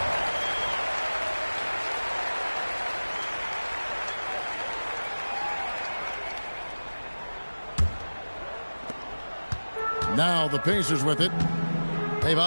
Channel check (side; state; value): both; inverted; correlation -1.00